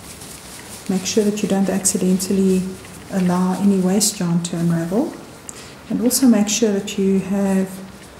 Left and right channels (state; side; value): identical; both; correlation 1.00